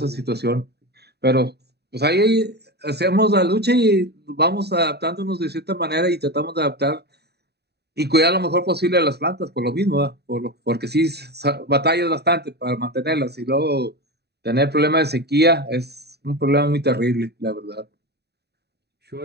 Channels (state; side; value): late; left; 0.48 ms